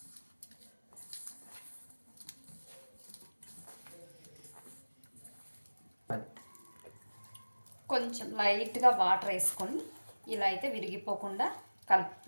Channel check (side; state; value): both; inverted; correlation -1.00